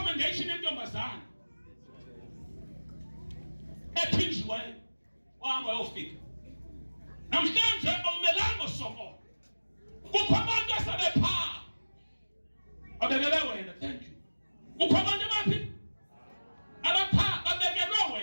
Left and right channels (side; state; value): both; inverted; correlation -1.00